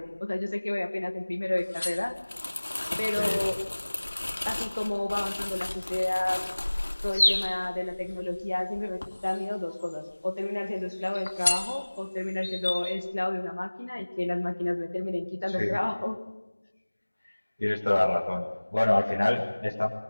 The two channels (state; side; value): inverted; both; correlation -1.00